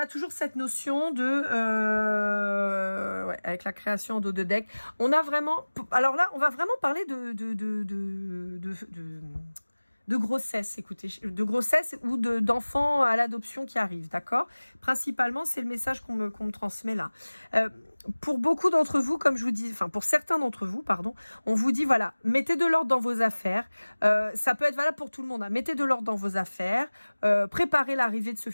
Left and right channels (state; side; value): inverted; both; correlation -1.00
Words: toujours cette notion de ouais, avec la création de deck. On a vraiment. Alors là, on va vraiment parler de grossesse, écoutez, de grossesse ou d'enfants à l'adoption qui arrivent, d'accord? Principalement, c'est le message qu'on me transmet là. Pour beaucoup d'entre vous, comme je vous dis, enfin pour certains d'entre vous, pardon, on vous dit voilà, mettez de l'ordre dans vos affaires. Ça peut être valable pour tout le monde. Hein. Mettez de l'ordre dans vos affaires. Préparez l'arrivée de ce